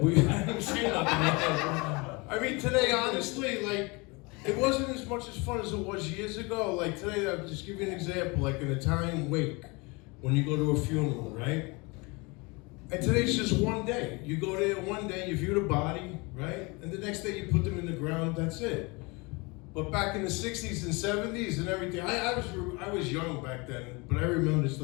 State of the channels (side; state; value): right; quieter; 27.3 dB